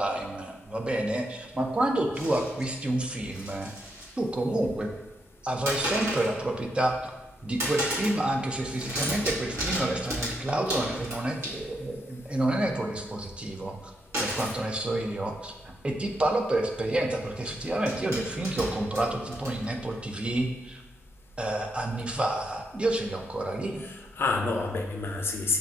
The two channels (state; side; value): normal; both; correlation 0.80